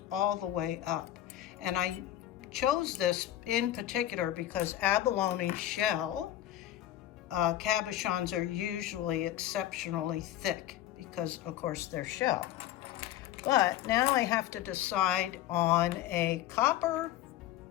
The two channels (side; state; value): right; quieter; 13.0 dB